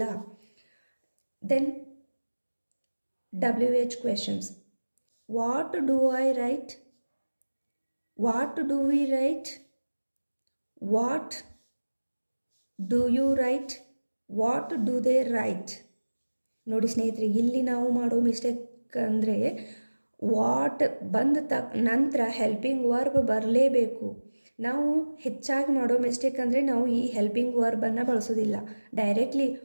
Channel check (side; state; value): both; inverted; correlation -1.00